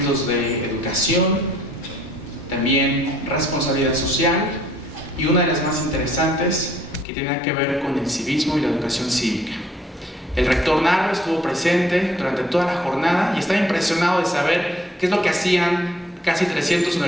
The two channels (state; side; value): normal; both; correlation 0.62